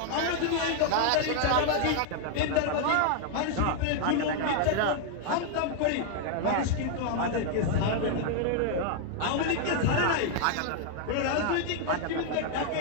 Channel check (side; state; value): both; different; correlation 0.00